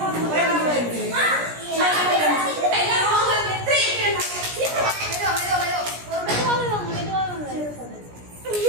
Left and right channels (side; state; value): left; late; 17 ms